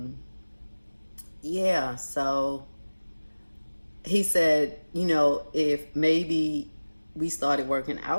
yeah, so he said, you know, if maybe we started working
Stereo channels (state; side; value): inverted; both; correlation -1.00